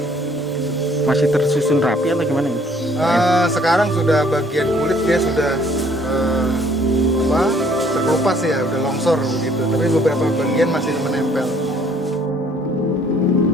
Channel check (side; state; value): both; normal; correlation 0.60